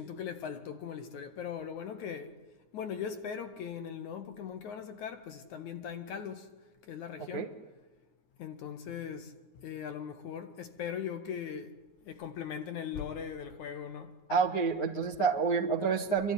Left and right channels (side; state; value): right; late; 9.6 ms